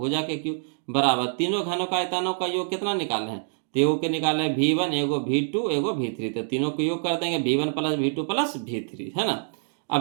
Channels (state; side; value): silent; left; digital silence